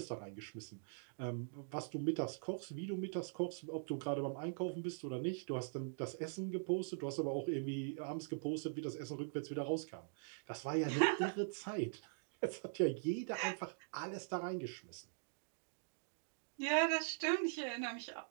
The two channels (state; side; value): silent; left; digital silence